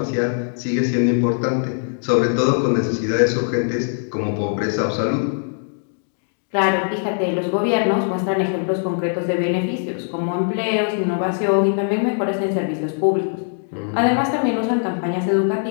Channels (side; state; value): right; silent; digital silence